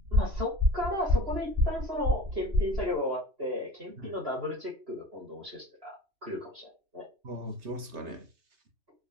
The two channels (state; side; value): late; left; 3.3 ms